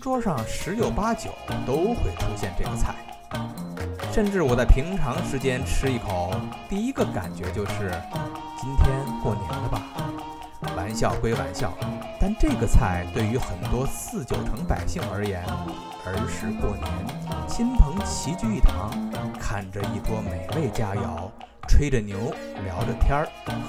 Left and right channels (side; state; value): both; identical; correlation 1.00